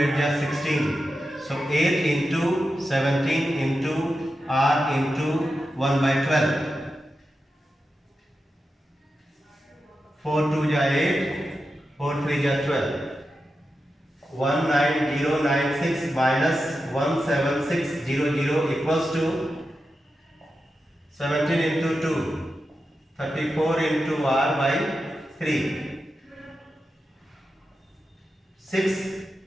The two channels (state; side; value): normal; both; correlation 0.90